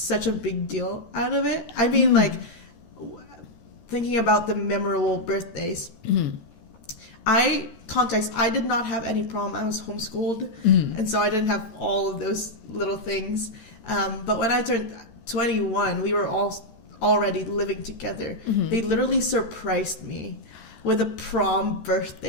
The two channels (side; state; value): right; late; 13 ms